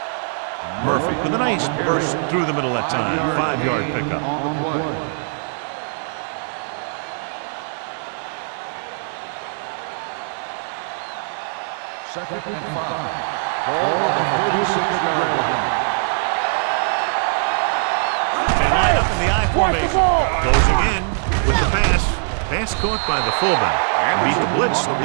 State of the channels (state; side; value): silent; left; 64 dB below the other